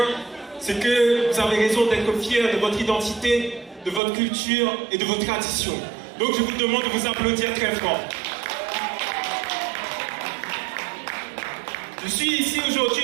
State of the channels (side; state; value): left; drops out; at 4.0 s